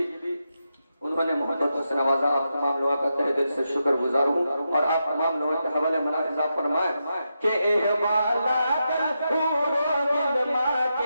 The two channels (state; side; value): inverted; both; correlation -0.86